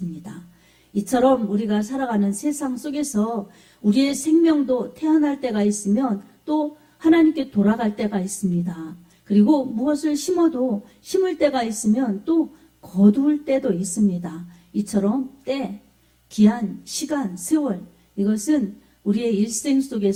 이처럼 우리가 살아가는 세상 속에서 우리의 생명도 태어날 때가 있으면 또 하나님께 돌아갈 때가 있습니다. 그리고 무엇을 심어도 심을 때가 있으면 또 거둘 때도 있습니다. 이처럼 때, 기한, 시간, 세월, 이것은 우리의 일생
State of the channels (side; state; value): both; identical; correlation 1.00